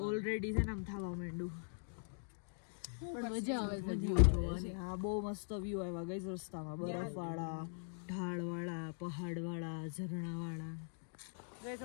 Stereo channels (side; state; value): right; silent; digital silence